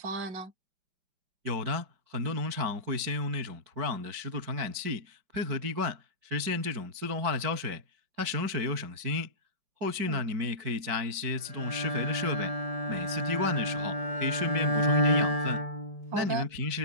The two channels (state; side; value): late; left; 4.6 ms